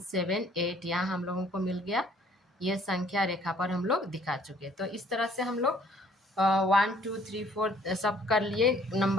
यहाँ हम लोगों को मिल गया, ये संख्या रेखा पर हम लोग दिखा चुके। तो इस तरह से हम लोग 1 2 3 4 सब कर लिए।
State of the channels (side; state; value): both; normal; correlation 0.59